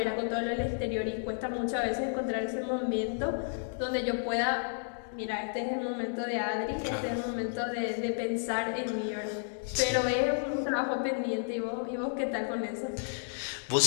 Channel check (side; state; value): right; silent; digital silence